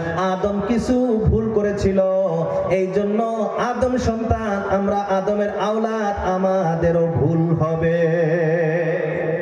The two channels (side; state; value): both; identical; correlation 1.00